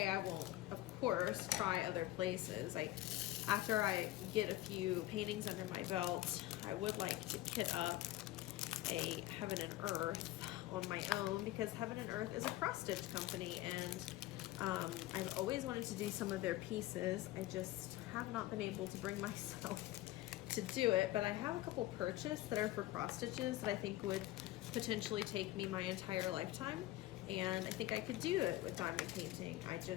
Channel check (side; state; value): right; quieter; 16.4 dB